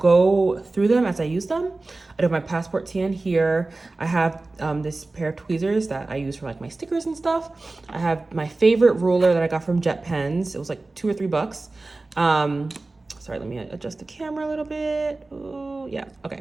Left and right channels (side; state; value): left; quieter; 3.2 dB